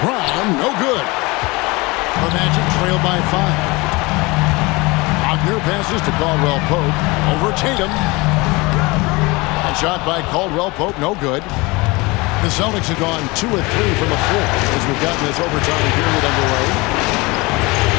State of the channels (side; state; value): right; quieter; 24.3 dB